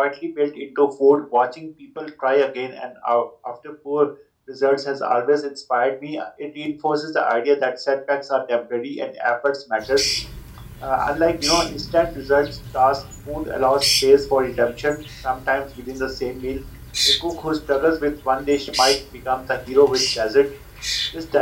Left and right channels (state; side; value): identical; both; correlation 1.00